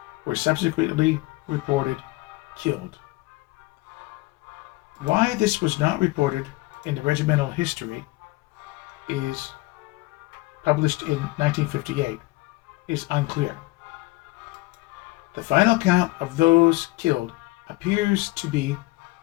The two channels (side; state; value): right; quieter; 21.2 dB